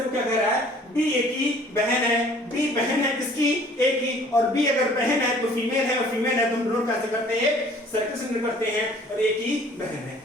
क्या कह रहा है, बी ए की बहन है, बी बहन है किसकी, ए की, और बी अगर बहन है तो फीमेल है, और फीमेल है तो हम डिनोट कैसे करते हैं, सर्किल से डिनोट करते हैं, और ए की बहन है,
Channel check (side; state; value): both; normal; correlation 0.54